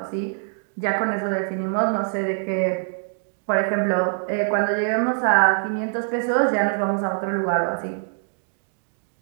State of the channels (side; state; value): left; silent; 63 dB below the other